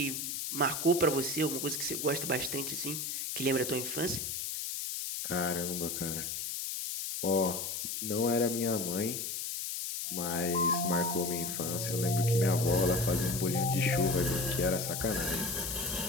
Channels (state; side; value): noise; left; hiss, 4 dB below the sound